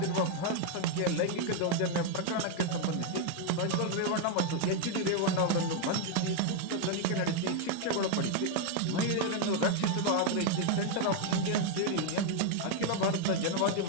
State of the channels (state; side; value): different; both; correlation 0.01